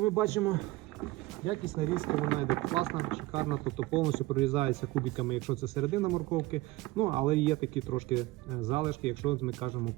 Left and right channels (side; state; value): left; quieter; 19.1 dB